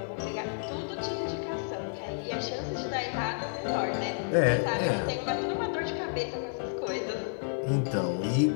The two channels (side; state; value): right; silent; 57 dB below the other